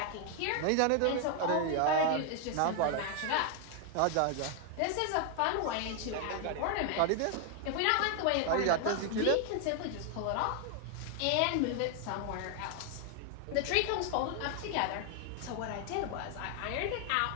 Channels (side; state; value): both; different; correlation 0.00